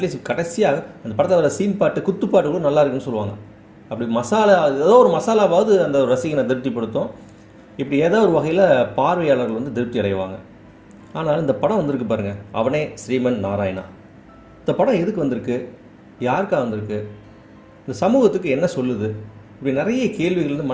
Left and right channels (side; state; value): both; identical; correlation 1.00